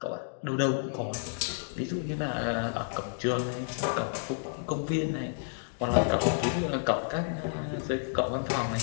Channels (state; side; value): silent; right; digital silence